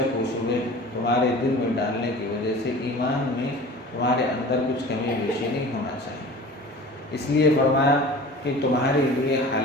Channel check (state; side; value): normal; both; correlation 0.40